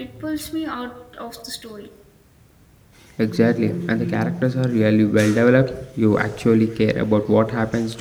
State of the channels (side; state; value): both; identical; correlation 1.00